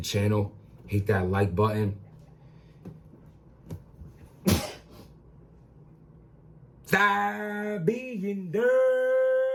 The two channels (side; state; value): both; identical; correlation 1.00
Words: Hit that like button. Stop being